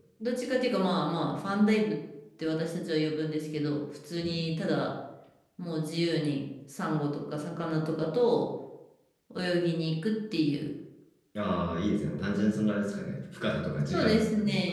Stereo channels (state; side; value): identical; both; correlation 1.00